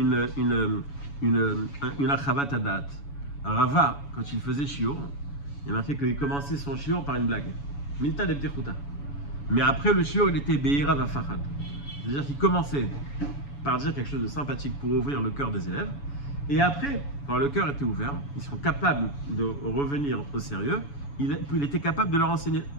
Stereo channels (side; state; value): right; late; 7.0 ms